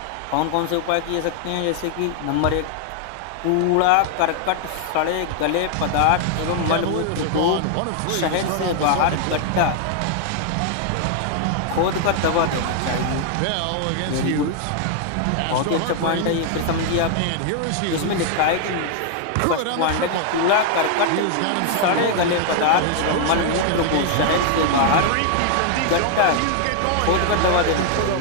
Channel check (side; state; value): both; different; correlation 0.00